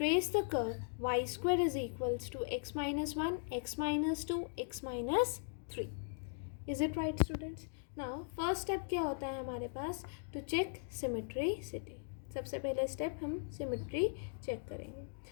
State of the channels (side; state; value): right; silent; digital silence